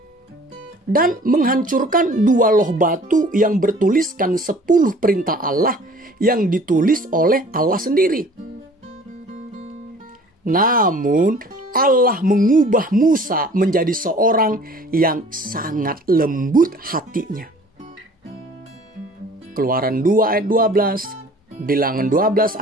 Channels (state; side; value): normal; both; correlation 0.50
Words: dan menghancurkan 2 loh batu yang bertuliskan 10 perintah Allah yang ditulis oleh Allah sendiri. Namun Allah mengubah Musa menjadi seorang yang sangat lembut hatinya. Keluaran 2 ayat 12, Bilangan 12